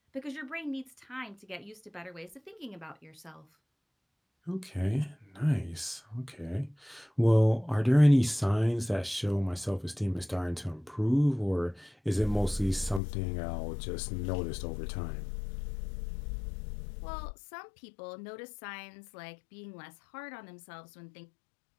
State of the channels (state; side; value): drops out; right; at 13.0 s